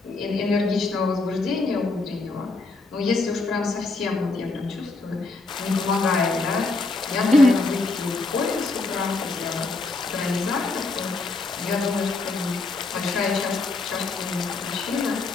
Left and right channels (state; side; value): quieter; right; 3.5 dB